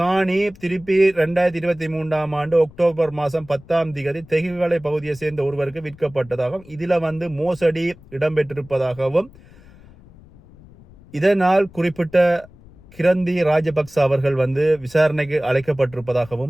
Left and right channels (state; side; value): noise; left; rumble, 23 dB below the sound